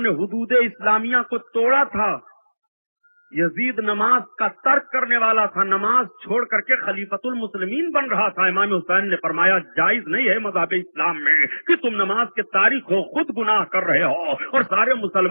نے حدود اسلامیہ کو توڑا تھا۔ یزید نماز کا ترک کرنے والا تھا، نماز چھوڑ کر کے خلیفۃ المسلمین بن رہا تھا۔ امام حسین نے فرمایا جائز نہیں ہے مذہب اسلام میں کہ تم نماز کے تاریخ ہو، خود گناہ کر رہے ہو اور سارے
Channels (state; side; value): inverted; both; correlation -1.00